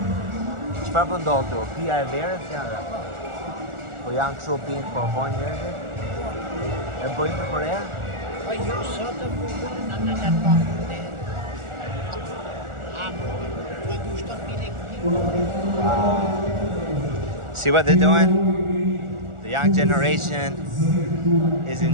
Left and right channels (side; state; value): left; late; 1.4 ms